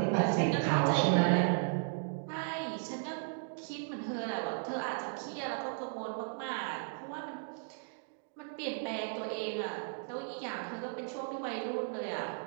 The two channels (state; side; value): silent; left; digital silence